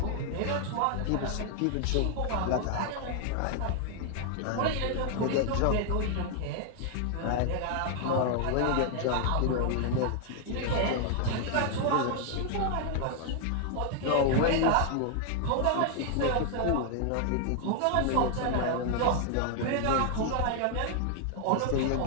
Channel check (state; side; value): different; both; correlation 0.00